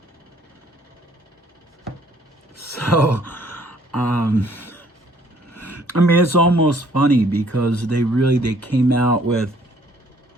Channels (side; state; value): both; normal; correlation 0.61